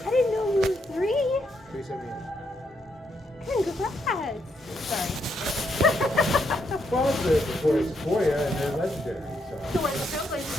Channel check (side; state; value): both; normal; correlation 0.78